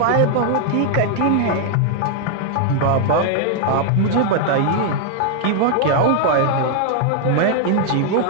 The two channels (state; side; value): different; both; correlation 0.00